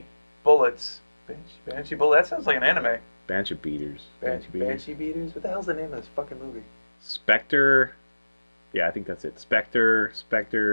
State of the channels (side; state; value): both; inverted; correlation -1.00